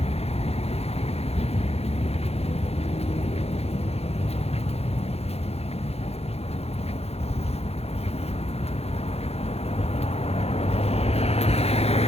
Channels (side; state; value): right; late; 0.30 ms